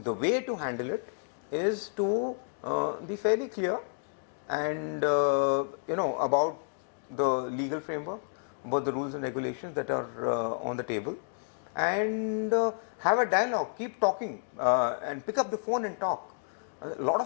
The way to handle it is to be fairly clear and about the legal framework, about the rules and regulations that are on the table, and have a dialogue, keep talking, and pick up the phone and talk. A lot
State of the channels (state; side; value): silent; right; digital silence